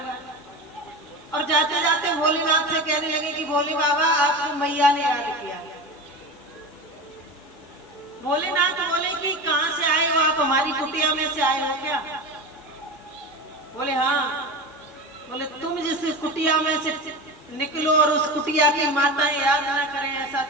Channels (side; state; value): both; normal; correlation 0.26